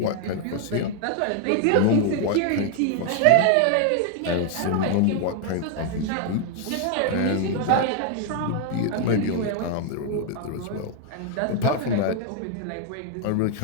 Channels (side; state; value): both; different; correlation 0.00